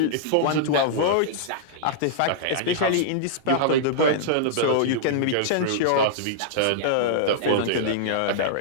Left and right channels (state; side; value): different; both; correlation -0.02